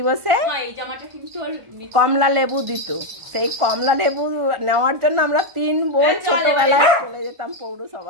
কমলা লেবু দিত। সেই কমলা লেবু নেওয়ার জন্য আমরা 3 বোন ছোটবেলায় চলে যেতাম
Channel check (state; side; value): late; left; 1.4 ms